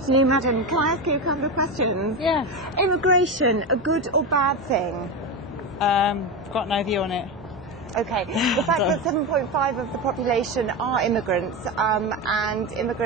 madam. Can I ask you a couple of questions? Yeah. Immigration, a good or bad thing? Got no view on it. Okay. The fact that 7.5% of the population are immigrants, and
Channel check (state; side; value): normal; both; correlation 0.17